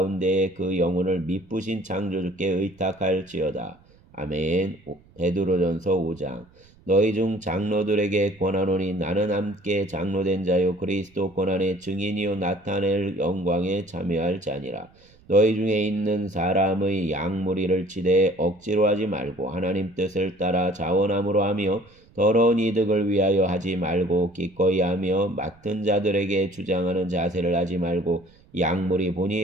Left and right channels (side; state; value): right; noise; rumble, 28 dB below the sound